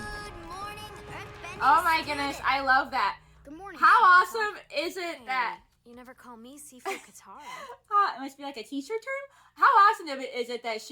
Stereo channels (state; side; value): identical; both; correlation 1.00